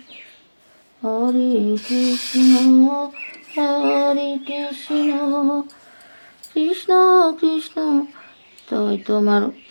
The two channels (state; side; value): inverted; both; correlation -1.00